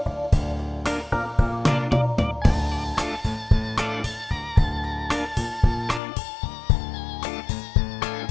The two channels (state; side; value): drops out; right; at 6.0 s